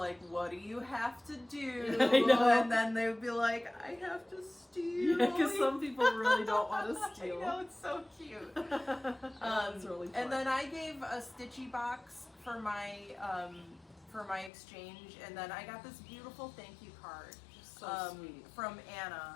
"What do you have to do?" I know. And then they would be like, "I have to steal." Yeah, because some people really don't want to steal. I know, it's so cute. That's really fun. And then I gave a stitchy box for my exchange, and then I got this beautiful thank you card so sweet. from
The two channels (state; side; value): drops out; right; at 14.5 s